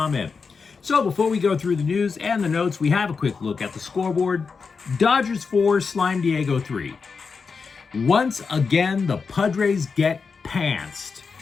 So before we go through the news and the notes, we have a quick look at the scoreboard. Dodgers 4, Slime Diego 3. Once again, the Padres get pantsed.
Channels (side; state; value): right; quieter; 5.1 dB